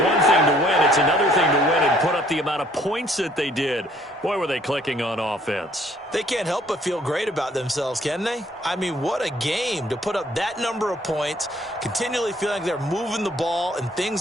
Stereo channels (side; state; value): both; normal; correlation 0.61